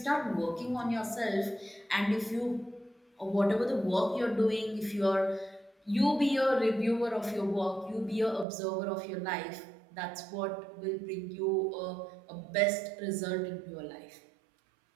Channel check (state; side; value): drops out; left; at 8.5 s